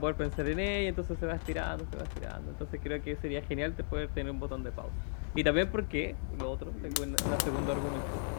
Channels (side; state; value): right; silent; digital silence